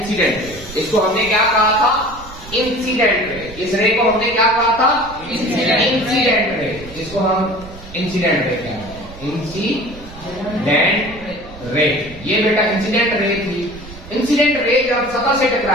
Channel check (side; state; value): right; noise; rumble, 17 dB below the sound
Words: रे। इसको हमने क्या कहा था? Incident ray. इस रे को हमने क्या कहा था? Incident ray. इसको हम इंसिडेंट रे कहते हैं, इंसिडेंट रे। ये बेटा इंसिडेंट रे थी। इंसिडेंट रे जब सतह से